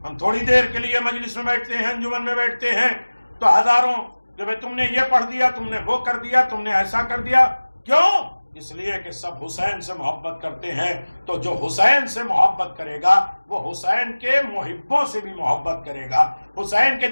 ہم تھوڑی دیر کے لیے مجلس میں بیٹھتے ہیں، انجمن میں بیٹھتے ہیں تو ہزاروں کہ بھئی تم نے یہ پڑھ دیا، تم نے وہ کر دیا، تم نے ایسا کر دیا. کیوں؟ اس لیے کہ سب حسین سے محبت کرتے ہیں. تو جو حسین سے محبت کرے گا وہ حسین کے محبوں سے بھی محبت کرے گا، حسین کے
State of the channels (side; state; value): both; inverted; correlation -1.00